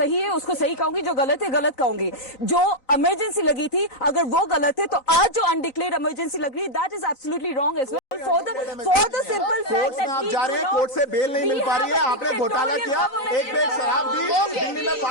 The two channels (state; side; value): late; right; 4.0 ms